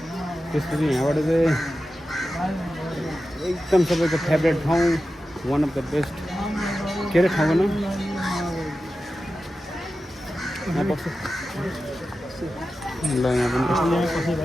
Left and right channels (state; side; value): normal; both; correlation 0.93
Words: त्यसपछि यहाँबाट चाहिँ एकदम सबैको फेभरेट ठाउँ वान अफ द बेस्ट के अरे ठाउँको नाम यहाँ पर्छ ल यहाँ पनि